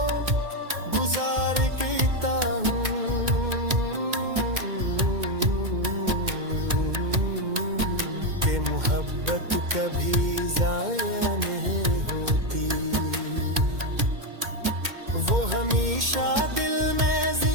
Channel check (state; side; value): late; left; 2.1 ms